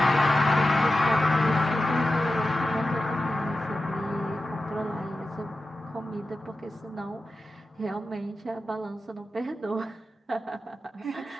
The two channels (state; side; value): normal; both; correlation 0.92